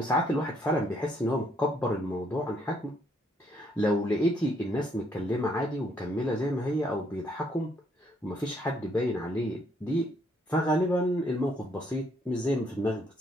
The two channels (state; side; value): normal; both; correlation 0.69